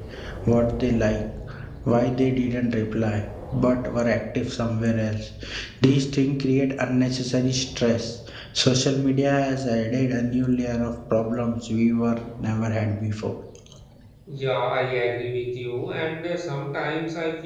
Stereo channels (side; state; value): both; identical; correlation 1.00